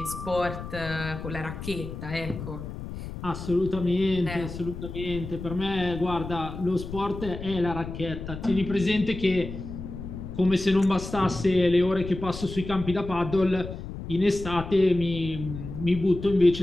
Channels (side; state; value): left; noise; rumble, 9 dB below the sound